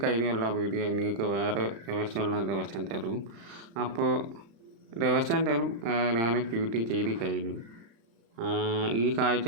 കഴിഞ്ഞുള്ള വീഡിയോ നിങ്ങൾക്ക് വേറെ ദിവസം തരും. അപ്പോൾ ദിവസം തരും ഞാൻ ഡ്യൂട്ടി ചെയ്ത് കഴിഞ്ഞു. ഈ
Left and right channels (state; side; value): late; left; 35 ms